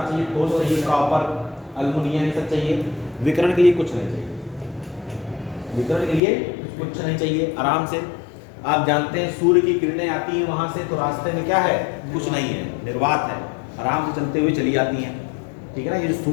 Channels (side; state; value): right; drops out; at 6.2 s